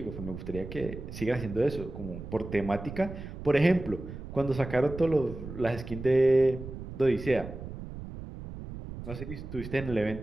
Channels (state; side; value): noise; right; rumble, 10 dB below the sound